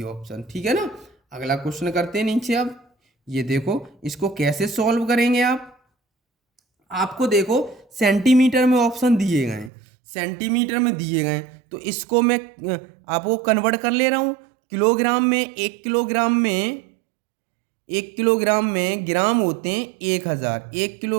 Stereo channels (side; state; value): left; drops out; at 9.7 s